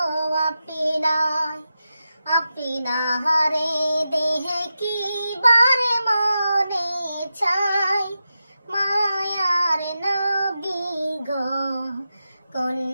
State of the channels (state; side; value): inverted; both; correlation -0.90